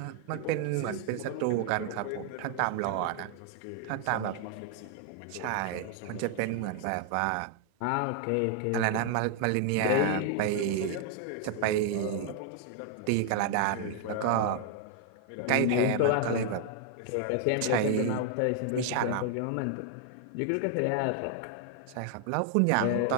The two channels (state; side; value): different; both; correlation 0.00